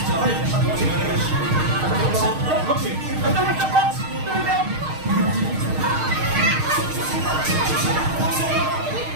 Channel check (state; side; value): late; left; 6.5 ms